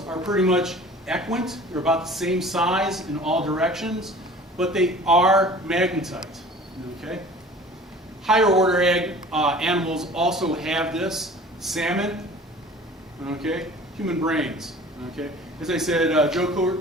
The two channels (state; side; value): normal; both; correlation 0.45